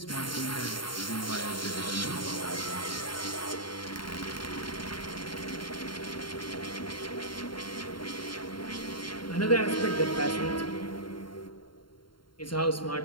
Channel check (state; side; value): late; right; 0.72 ms